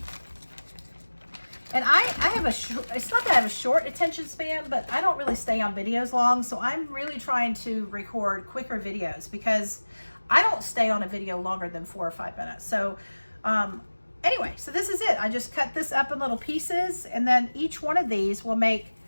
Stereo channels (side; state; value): both; inverted; correlation -1.00